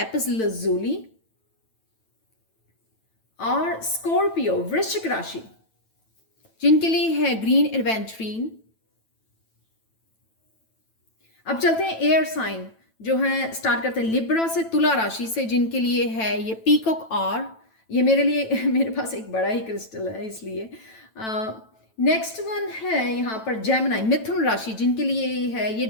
लजूली। और स्कॉर्पियो, वृश्चिक राशि, जिनके लिए है ग्रीन एडवेंचरीन। अब चलते हैं एयर साइन, जो है स्टार्ट करते हैं लिब्रा से, तुला राशि से, जिनके लिए है ये पीकॉक। और ये मेरे लिए मेरे पास एक बड़ा ही क्रिस्टल है इसलिए। नेक्स्ट वन है यहाँ पर जेमिनी, मिथुन राशि, जिनके लिए है ये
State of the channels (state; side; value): late; right; 9.1 ms